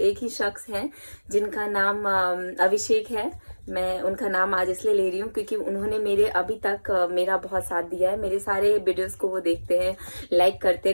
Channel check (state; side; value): inverted; both; correlation -1.00